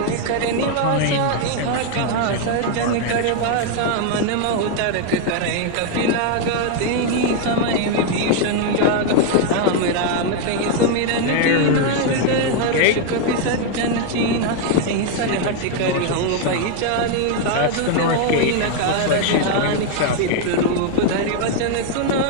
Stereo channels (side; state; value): both; different; correlation 0.01